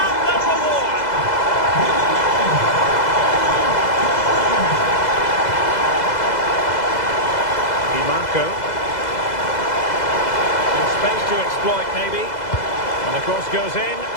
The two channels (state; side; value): late; right; 2.0 ms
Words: their reward. Di Marco. Space to exploit, maybe.